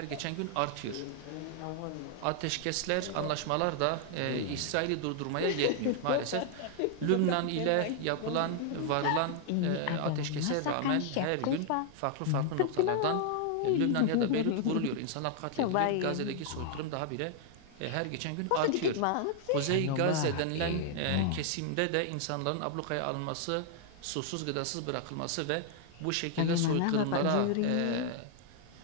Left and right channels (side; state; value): both; different; correlation 0.00